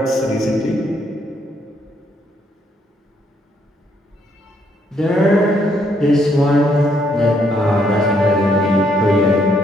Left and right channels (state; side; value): normal; both; correlation 0.71